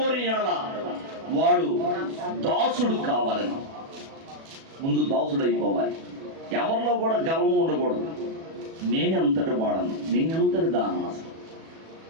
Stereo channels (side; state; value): left; late; 37 ms